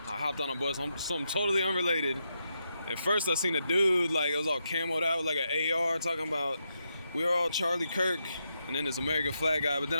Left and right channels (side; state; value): both; inverted; correlation -0.83